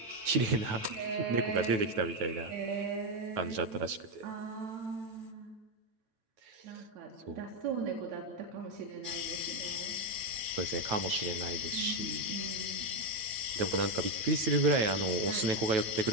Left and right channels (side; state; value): left; late; 9.0 ms